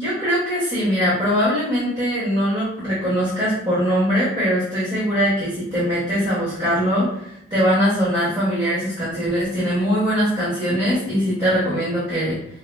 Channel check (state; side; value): normal; both; correlation 0.54